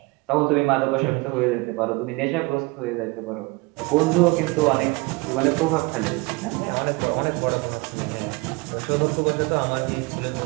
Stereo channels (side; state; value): left; quieter; 25.3 dB